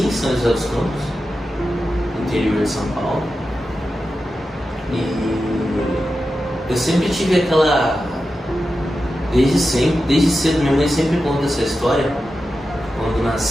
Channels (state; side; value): normal; both; correlation 0.91